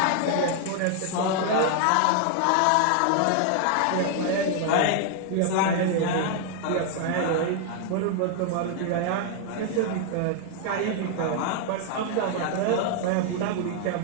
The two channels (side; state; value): both; different; correlation 0.00